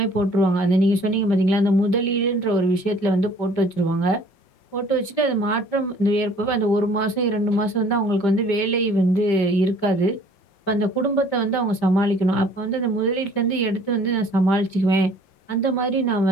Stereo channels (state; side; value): late; right; 5.1 ms